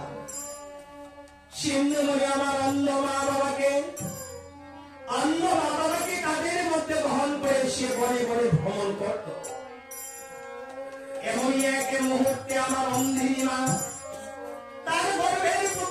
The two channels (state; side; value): identical; both; correlation 1.00